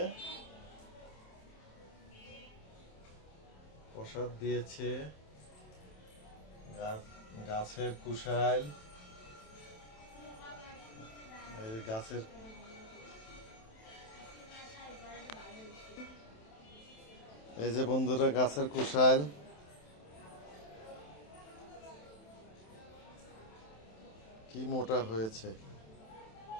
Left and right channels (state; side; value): late; right; 27 ms